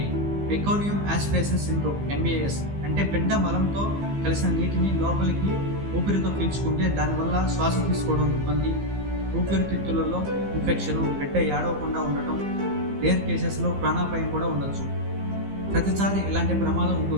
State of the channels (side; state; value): left; late; 15 ms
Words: మెకానియం యాస్పిరేషన్ సిండ్రోమ్, MAS, అంటే బిడ్డ మలంతో కలిసిన నీటిని లోపలికి ఊపిరితో పీల్చుకుంటే దానివల్ల శ్వాస తీసుకోవడం ఇబ్బంది, ఊపిరితిత్తులలో ఇన్ఫెక్షన్, బిడ్డ ఏడవకుండా ఉండటం, రేర్ కేసెస్లో ప్రాణాపాయం కూడా ఉండొచ్చు. ప్రతిసారి ఇలాంటి ప్రమాదం